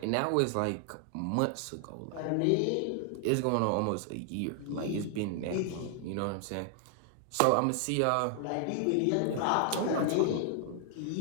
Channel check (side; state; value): both; different; correlation 0.00